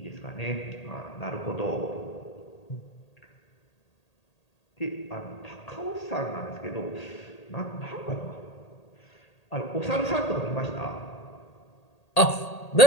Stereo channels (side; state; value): right; late; 1.8 ms